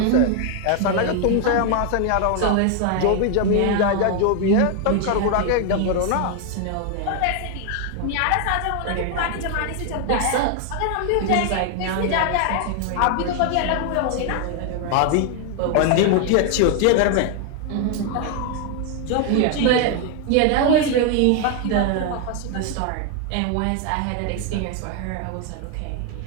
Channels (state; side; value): different; both; correlation 0.00